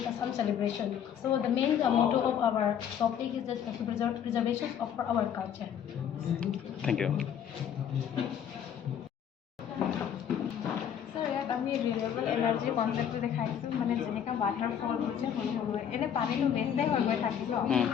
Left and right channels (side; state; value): right; quieter; 8.8 dB